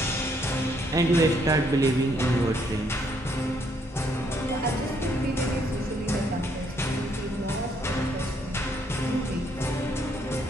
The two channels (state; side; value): normal; both; correlation 0.70